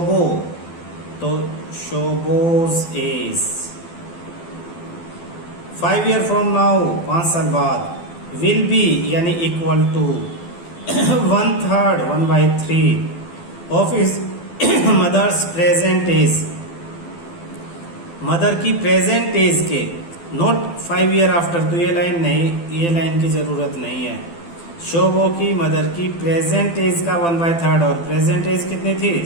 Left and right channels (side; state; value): right; late; 12 ms